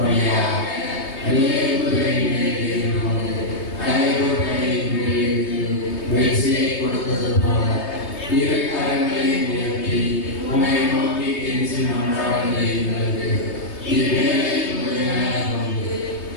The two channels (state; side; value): late; right; 3.2 ms